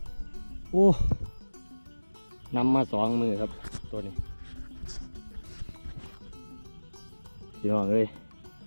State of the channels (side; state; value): both; inverted; correlation -1.00